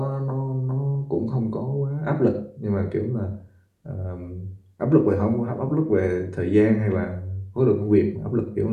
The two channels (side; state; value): both; identical; correlation 1.00